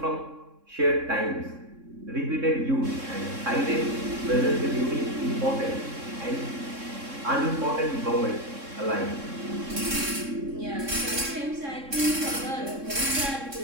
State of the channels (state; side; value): late; left; 3.6 ms